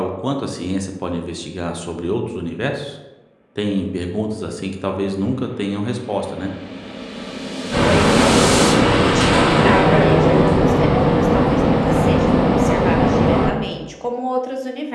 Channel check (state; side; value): identical; both; correlation 1.00